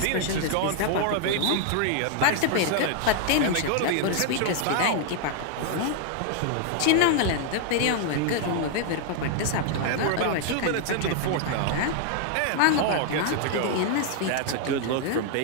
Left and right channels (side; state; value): both; different; correlation 0.00